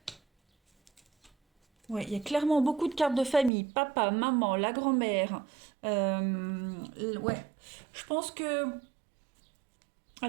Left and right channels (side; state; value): left; drops out; at 3.5 s